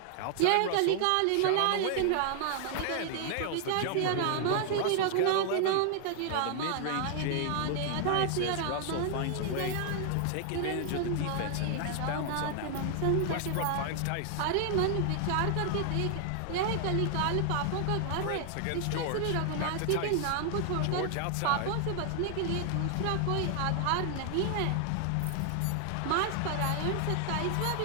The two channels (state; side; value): different; both; correlation 0.00